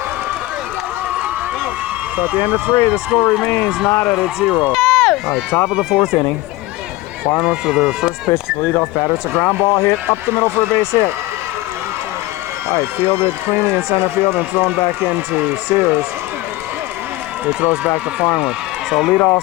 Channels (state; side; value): quieter; right; 18.4 dB